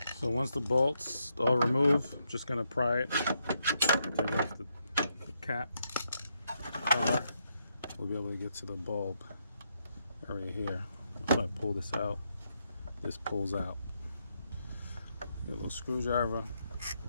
So once the bolts are removed, I'm just going to pry it, take off the cap cover. We'll be able to get to the bulb area here. If I pull this out, this pulls out. Get a little screwdriver,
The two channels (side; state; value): both; inverted; correlation -0.79